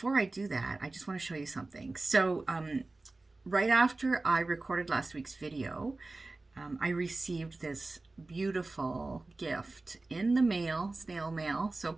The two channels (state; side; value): quieter; left; 3.2 dB